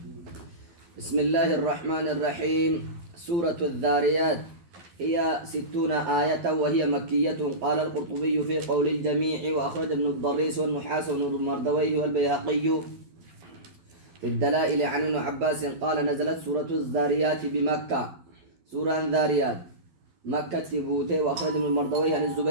بسم الله الرحمن الرحيم. سورة الذاريات هي 60 آية وهي مكية. قال القرطبي في قول الجميع وأخرج ابن الضريس والنحاس وابن المردويه والبيهقي في الدلائل عن ابن عباس قال نزلت سورة الذاريات بمكة. سورة الذاريات مكة تبوته. وأخرج ابن المردويه عن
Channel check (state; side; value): late; left; 12 ms